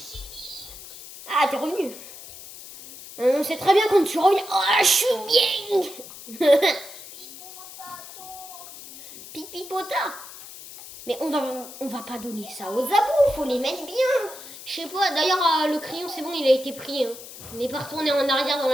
Ah, t'es revenu. On sait très bien quand tu reviens. Oh, je suis bien. Pipipota. Mais on va pas donner ça aux abos, faut les mettre bien. Je sais pas, d'ailleurs le crayon c'est bon, il a été pris. Hein. On n'est pas retourné en arrière dans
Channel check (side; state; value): left; noise; hiss, 15 dB below the sound